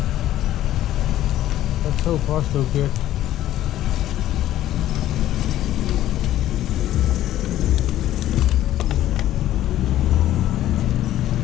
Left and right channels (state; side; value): quieter; right; 13.2 dB